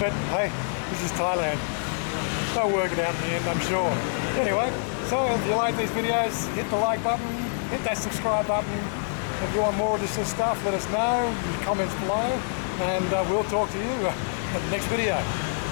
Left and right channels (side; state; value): right; silent; 61 dB below the other